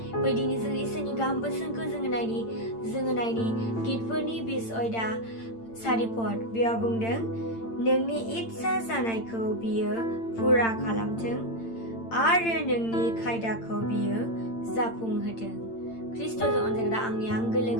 फै दिनै जों इसोरनि गाहाम बोसोनखौ जोङो नायनि गितफोरनि 20 अयदा 4 पद। बेयाव बुंदों नोंनि इच्ছা जानायखौ बियो फुरा खालामथों आरो नोंनि खायदाखौ बियो जाफुंहोथों। ख्रिस्ट'जों अनजाग्रा आंनि आंगो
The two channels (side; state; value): right; late; 8.8 ms